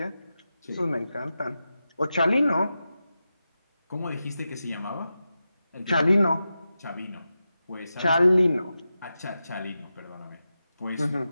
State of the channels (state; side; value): inverted; both; correlation -0.91